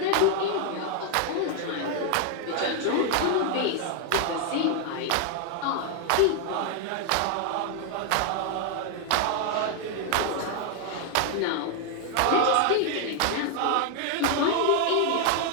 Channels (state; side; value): different; both; correlation 0.00